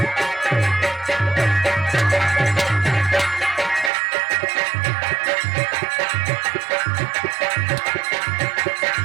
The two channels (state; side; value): drops out; left; at 3.9 s